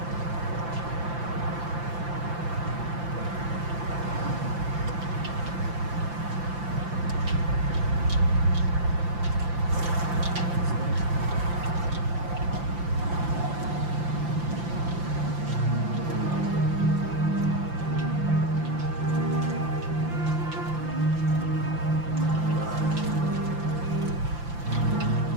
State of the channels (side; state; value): left; late; 5.8 ms